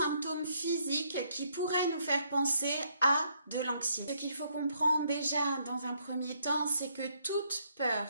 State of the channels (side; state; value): both; inverted; correlation -0.71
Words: physiques qui pourraient nous faire penser à de l'anxiété. Ce qu'il faut comprendre déjà dans un premier temps, c'est que toute peur